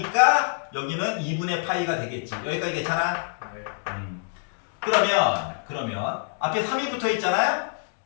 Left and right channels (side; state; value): right; silent; 56 dB below the other